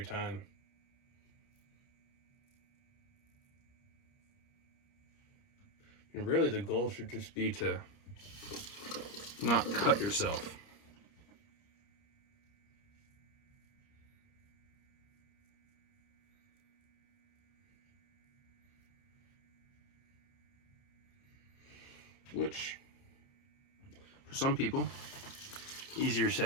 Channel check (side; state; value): right; late; 30 ms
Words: time. And really, the goal should just be to not cut yourself. Which, for some people, easier